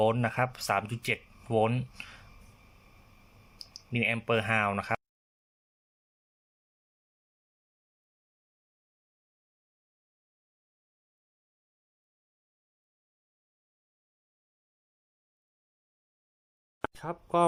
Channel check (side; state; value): both; identical; correlation 1.00